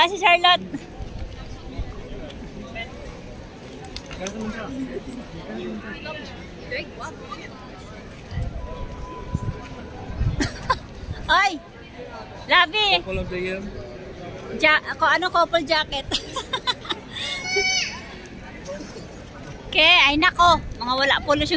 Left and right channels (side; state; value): both; identical; correlation 1.00